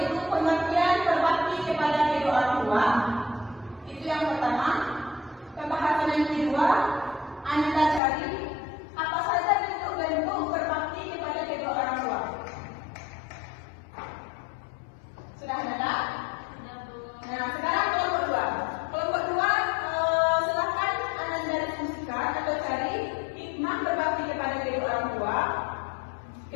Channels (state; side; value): drops out; right; at 8.0 s